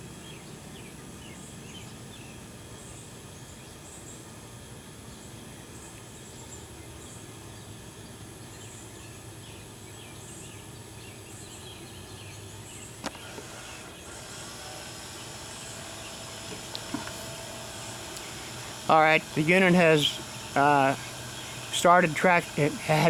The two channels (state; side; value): identical; both; correlation 1.00